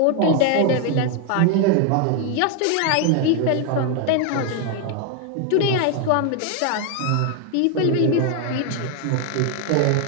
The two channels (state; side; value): different; both; correlation 0.00